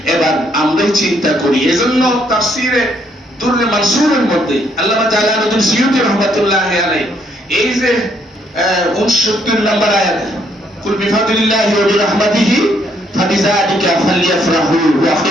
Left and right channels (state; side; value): normal; both; correlation 0.70